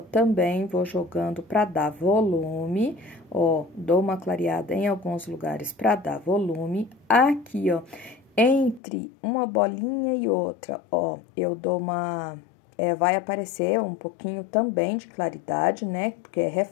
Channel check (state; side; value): drops out; right; at 8.8 s